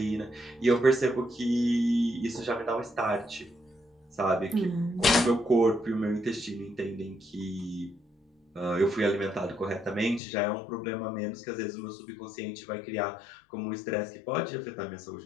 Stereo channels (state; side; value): drops out; right; at 10.2 s